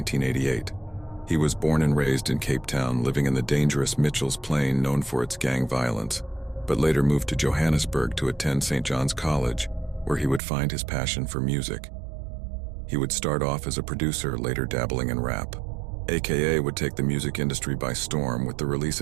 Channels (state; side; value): drops out; left; at 10.4 s